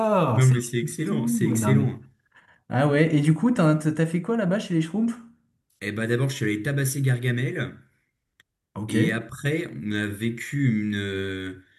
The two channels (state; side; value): identical; both; correlation 1.00